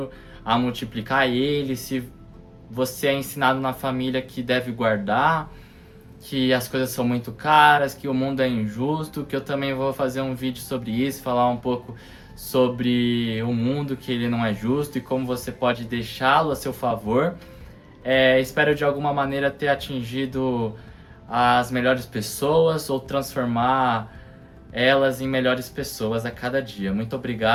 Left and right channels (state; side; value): identical; both; correlation 1.00